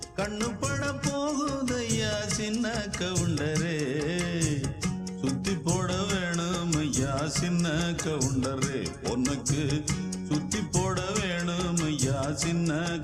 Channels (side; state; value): both; identical; correlation 1.00